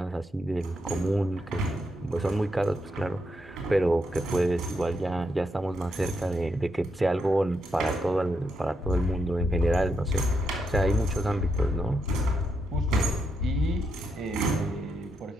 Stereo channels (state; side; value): normal; both; correlation 0.81